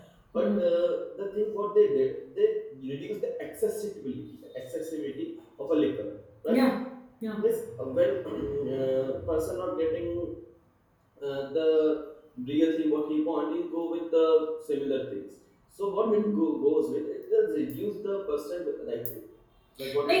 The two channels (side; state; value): both; identical; correlation 1.00